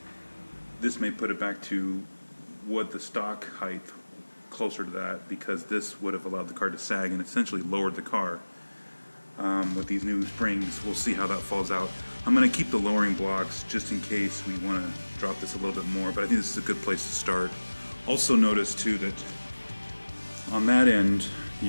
this may put it back to what the stock height closer to that, because this would have allowed the car to sag and essentially lowered the car. With these new springs, we'll see how that falls out. I'm going to keep the lowering blocks just in case we want to drop this a little bit more, but I think this is a good place to start. Also notice too that on that end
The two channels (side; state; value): both; inverted; correlation -1.00